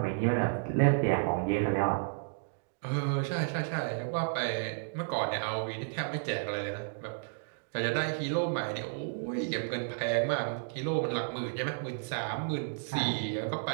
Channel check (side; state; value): left; silent; digital silence